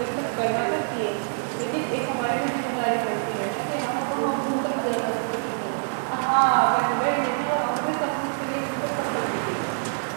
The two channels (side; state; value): left; silent; 59 dB below the other